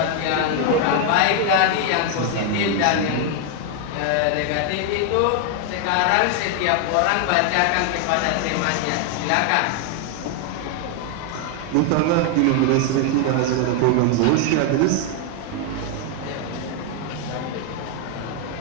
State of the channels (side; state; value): both; different; correlation 0.00